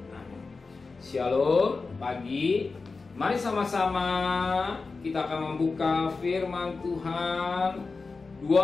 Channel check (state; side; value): quieter; right; 4.2 dB